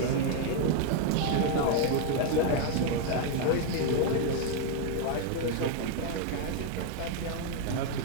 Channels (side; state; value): both; different; correlation 0.00